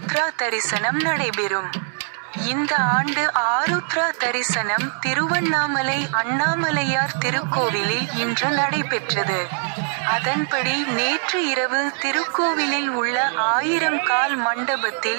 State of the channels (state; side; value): silent; left; digital silence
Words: தரிசனம் நடைபெறும். இந்த ஆண்டு ஆருத்ரா தரிசனம் திருவண்ணாமலை அண்ணாமலையார் திருக்கோவிலில் இன்று நடைபெற்றது. அதன்படி நேற்று இரவு திருக்கோவிலில் உள்ள 1000 கால்